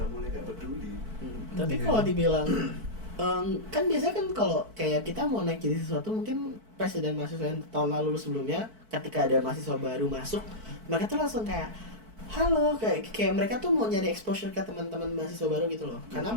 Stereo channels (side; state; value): left; late; 4.5 ms